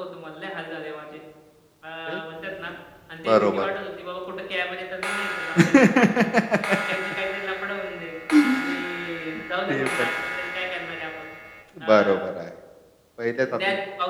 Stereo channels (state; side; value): identical; both; correlation 1.00